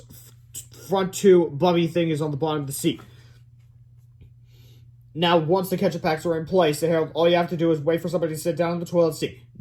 front 2 bubby thingies on the bottom of the seat. Now, once the ketchup packs are in place, Harold, all you have to do is wait for somebody to sit down in the toilet seat.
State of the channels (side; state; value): both; identical; correlation 1.00